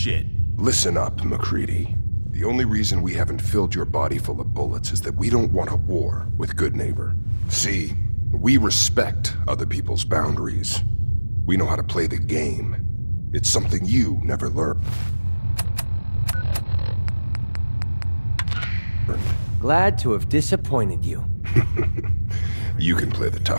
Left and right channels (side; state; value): both; inverted; correlation -1.00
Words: Listen up, MacReady. The only reason we haven't filled your body full of bullets is that we don't want a war with Goodneighbor. See, we respect other people's boundaries. We know how to play the game. It's something you never learned. Glad to have disappointed you. You can play the